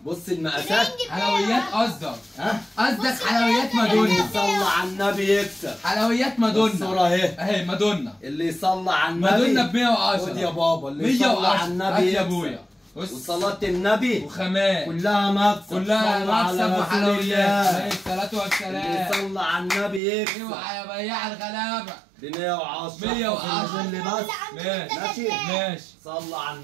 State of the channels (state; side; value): drops out; left; at 20.0 s